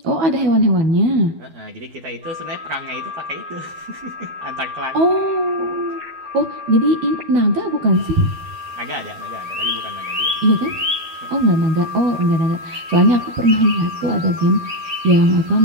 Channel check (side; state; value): left; late; 12 ms